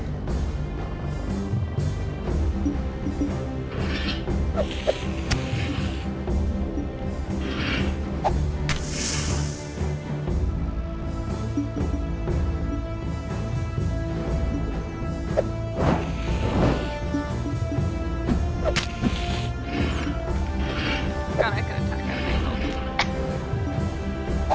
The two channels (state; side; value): identical; both; correlation 1.00